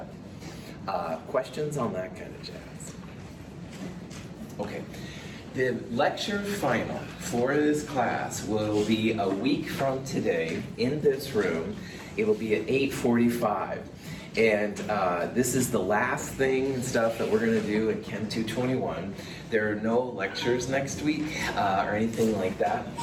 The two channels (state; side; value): identical; both; correlation 1.00